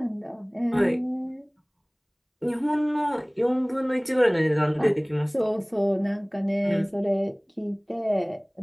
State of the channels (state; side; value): identical; both; correlation 1.00